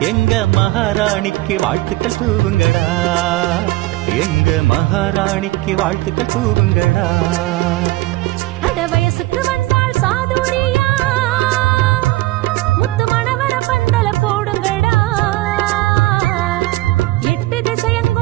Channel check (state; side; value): quieter; left; 18.7 dB